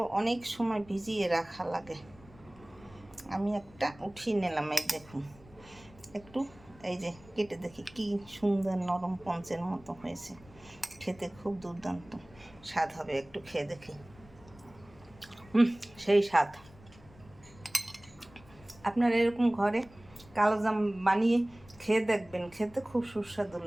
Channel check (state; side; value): noise; left; rumble, 23 dB below the sound